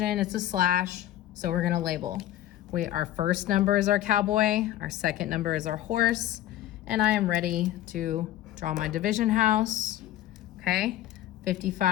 it's a slash, so we're gonna label. Our first number is our cowboy, our second number is our horse, and I am ready to draw my division house, okay?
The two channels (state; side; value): quieter; right; 13.5 dB